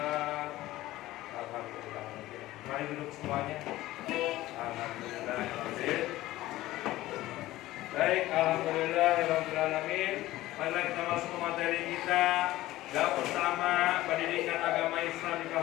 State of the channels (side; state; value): right; quieter; 16.5 dB